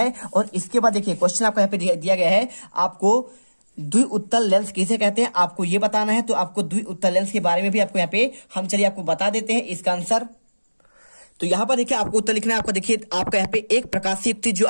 और इसके बाद देखिए क्वेश्चन आपको यहाँ पे दिया गया है, आपको द्विउत्तल लेंस किसे कहते हैं, आपको ये बताना है। तो आपको द्विउत्तल लेंस के बारे में भी आपको यहाँ पे हम चलिए आपको बता देते हैं इसका आंसर। तो यहाँ पर देखिए आपको उत्तर लिखना है। आपका देखिए आपका यहाँ पे एक प्रकाशीय युक्ति जो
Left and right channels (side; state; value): both; inverted; correlation -1.00